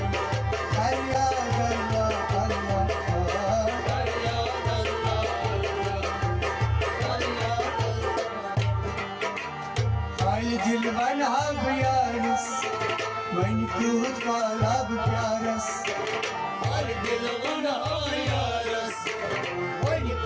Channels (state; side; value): identical; both; correlation 1.00